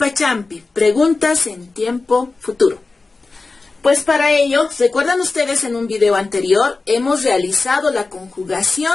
preguntas en tiempo futuro. Pues para ello, ¿recuerdan ustedes en un video anterior? Hemos realizado la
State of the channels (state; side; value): quieter; right; 3.7 dB